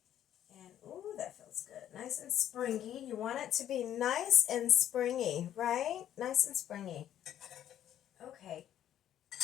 And, ooh, that feels good. Nice and springy. You want it to be nice and springy, right? Nice and springy. Okay.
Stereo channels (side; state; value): right; quieter; 11.0 dB